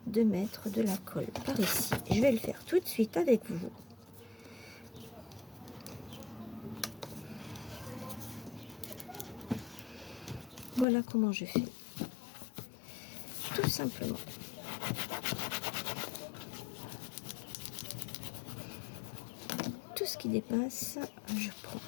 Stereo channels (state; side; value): drops out; right; at 10.9 s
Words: de mettre de la colle par ici. Je vais le faire tout de suite avec vous. Voilà comment je fais. Tout simplement. Tout ce qui dépasse, je prends